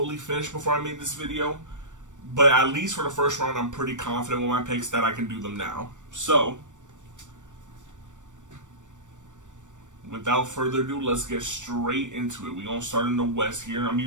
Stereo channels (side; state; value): left; late; 0.86 ms